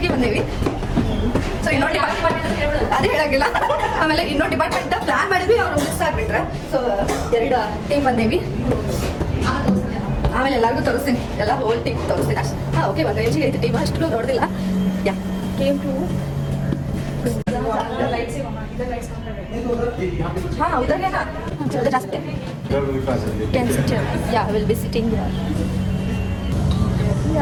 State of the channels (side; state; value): both; identical; correlation 1.00